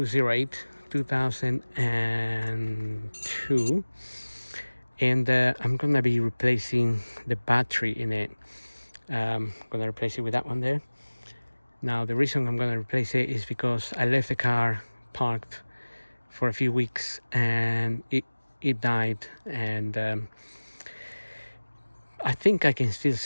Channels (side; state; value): both; inverted; correlation -1.00